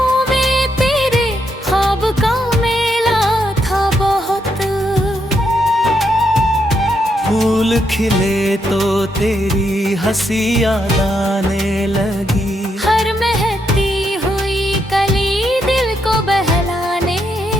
में तेरे ख्वाब का मेला था बहुत। फूल खिले तो तेरी हंसी याद आने लगी। हर महकती हुई कली दिल को बहलाने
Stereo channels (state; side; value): normal; both; correlation 0.79